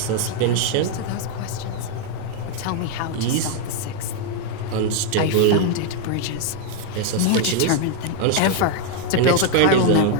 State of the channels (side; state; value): both; different; correlation 0.00